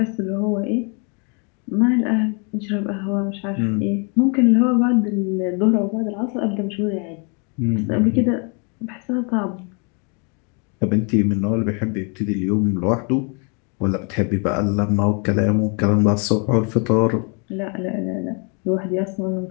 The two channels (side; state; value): right; quieter; 35.6 dB